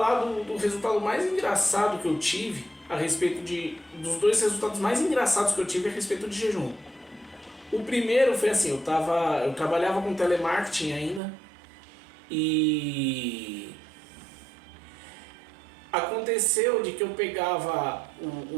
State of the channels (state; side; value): drops out; left; at 11.2 s